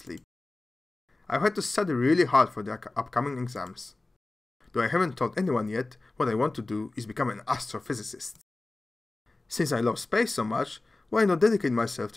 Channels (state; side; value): quieter; right; 3.1 dB